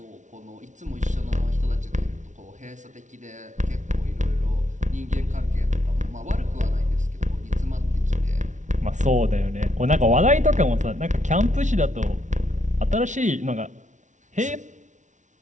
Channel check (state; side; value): late; left; 0.36 ms